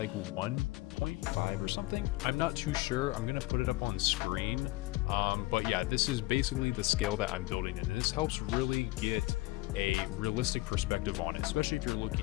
1.5 or something. I'm not too sure. I'm going to put it up on screen. But yeah, this is basically the scale that I'm building in. This helps really get a realistic perspective on it, especially if you're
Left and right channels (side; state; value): right; quieter; 19.7 dB